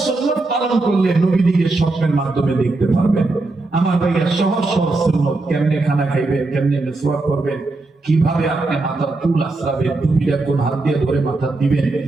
সুন্নাত পালন করলে নবীদিকে স্বপ্নের মাধ্যমে দেখতে পারবেন? আমার ভাইয়া সহজ সহজ সুন্নাত, কেমনে খানা খাইবেন, কেমনে মিসওয়াক করবেন, কিভাবে আপনি মাথার চুল আশ্রাবেন, টুপিটা কোন হাত দিয়ে ধরে মাথা দিবেন,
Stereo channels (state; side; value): quieter; left; 3.2 dB